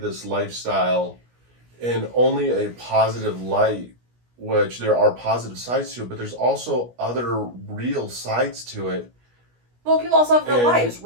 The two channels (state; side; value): late; left; 17 ms